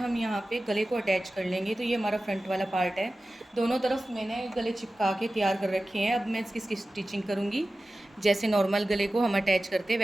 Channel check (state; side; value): normal; both; correlation 0.95